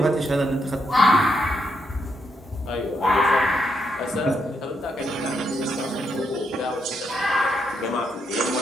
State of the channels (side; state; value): both; normal; correlation 0.79